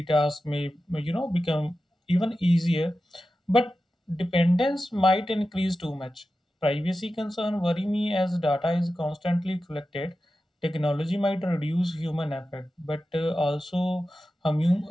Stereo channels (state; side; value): normal; both; correlation 0.92